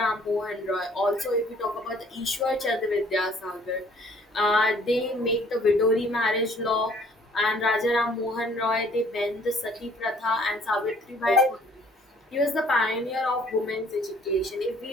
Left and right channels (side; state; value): both; normal; correlation 0.58